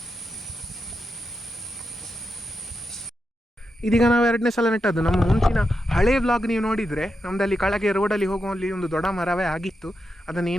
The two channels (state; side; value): normal; both; correlation 0.86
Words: ಇದೀಗ ನಾವು 2ನೇ ಸಲ ನೆಟ್ಟದ್ದು. ನಮ್ಮ ಮುಂಚಿನ ಹಳೆ ವ್ಲಾಗ್ ನೀವು ನೋಡಿದರೆ, ನಮ್ಮದಲ್ಲಿ ಕೆಳಗೆ ರೋಡಲ್ಲಿ ಹೋಗುವಲ್ಲಿ ಒಂದು ದೊಡ್ಡ ಮರವೇ ಆಗಿತ್ತು. ಅದನ್ನು